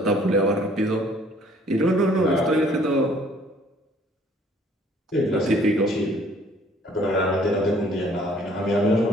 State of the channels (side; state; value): both; normal; correlation 0.59